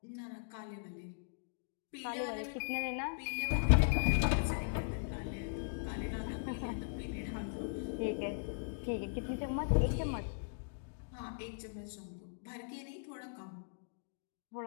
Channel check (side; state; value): right; silent; digital silence